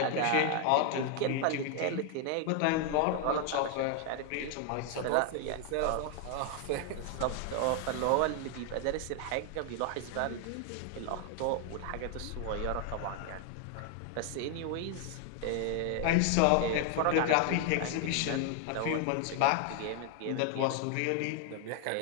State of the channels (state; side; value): different; both; correlation 0.00